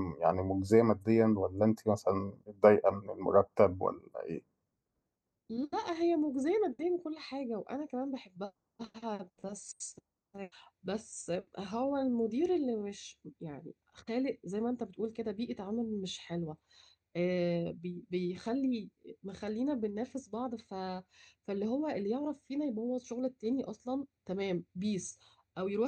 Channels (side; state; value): both; identical; correlation 1.00